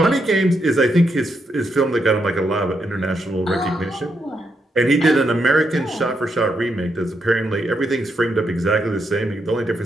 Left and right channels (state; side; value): normal; both; correlation 0.80